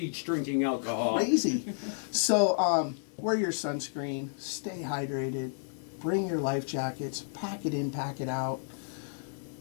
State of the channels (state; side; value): silent; right; digital silence